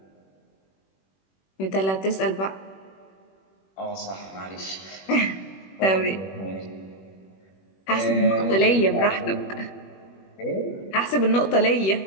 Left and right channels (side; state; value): right; late; 21 ms